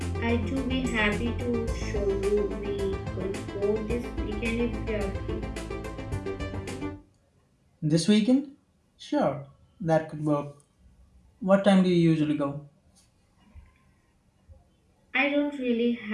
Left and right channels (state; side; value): identical; both; correlation 1.00